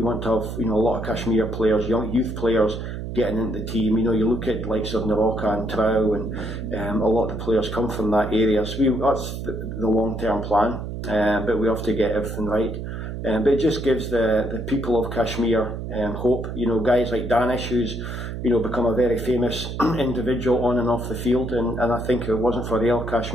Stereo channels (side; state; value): right; noise; hum, 6 dB below the sound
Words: to have, you know, a lot of Kashmir players, young youth players getting into the team. You know, you look at likes of Naroka and Trau, and a lot of the players come from that area. So that's the long-term plan, but we have to get everything right. But it just gives the people of Kashmir hope. You know, guys like Danish, who's, you know, become a very famous individual on and off the field, and I think if it wasn't for Real